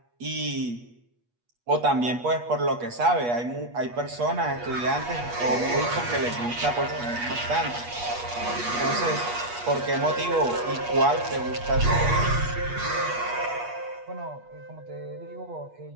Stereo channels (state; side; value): late; left; 8.3 ms